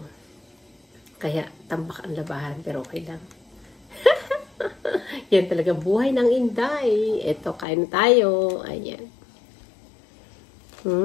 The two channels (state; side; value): drops out; right; at 7.7 s